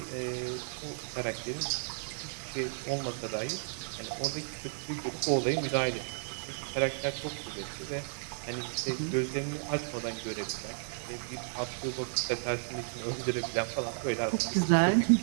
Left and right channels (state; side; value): silent; left; 55 dB below the other